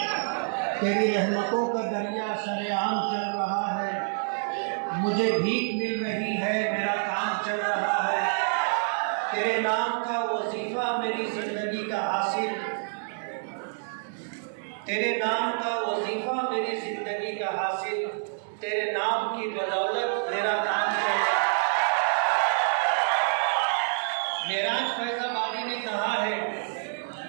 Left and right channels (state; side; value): silent; left; digital silence